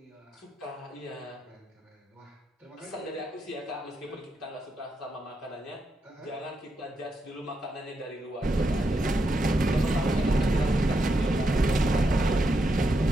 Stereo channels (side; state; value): both; normal; correlation 0.82